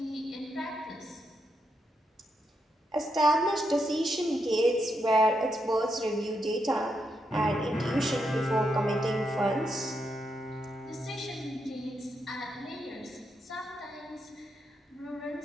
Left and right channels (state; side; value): normal; both; correlation 0.82